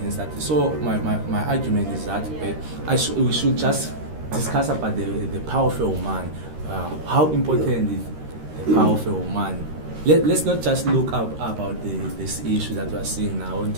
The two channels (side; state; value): left; late; 13 ms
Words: that. So my argument is that we should just discuss about the power of a woman, how important is the power of a woman. Let's not just look up about this issue that we are seeing now in